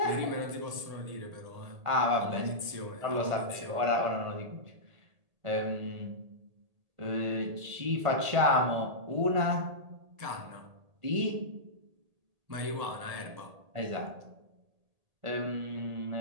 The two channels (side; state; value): left; late; 1.8 ms